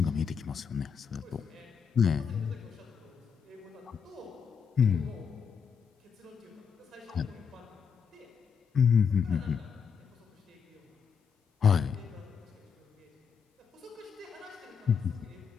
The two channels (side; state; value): right; quieter; 6.6 dB